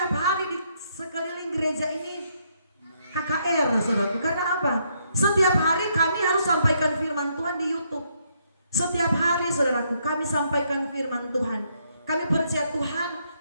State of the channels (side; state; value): both; inverted; correlation -0.74